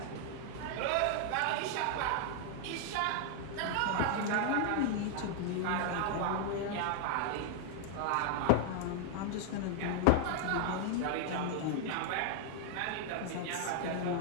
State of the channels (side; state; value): both; different; correlation 0.00